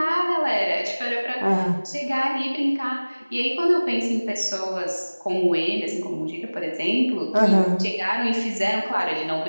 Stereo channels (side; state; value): both; inverted; correlation -1.00